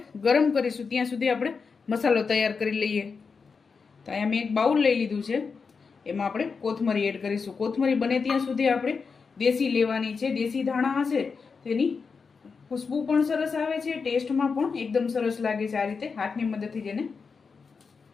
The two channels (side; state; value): right; quieter; 5.2 dB